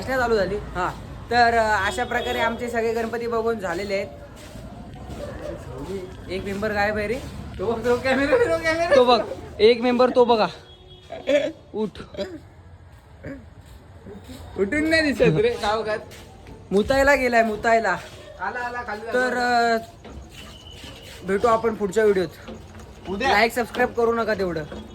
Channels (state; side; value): identical; both; correlation 1.00